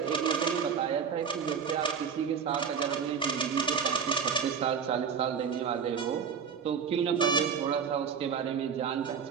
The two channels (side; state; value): left; quieter; 6.7 dB